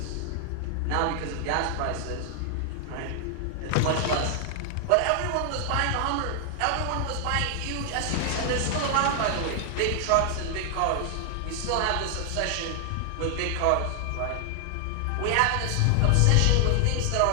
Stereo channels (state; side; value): different; both; correlation 0.00